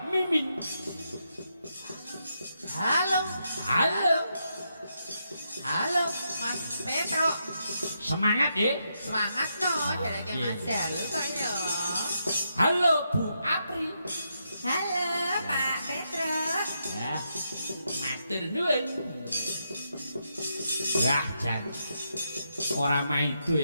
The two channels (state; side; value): inverted; both; correlation -0.82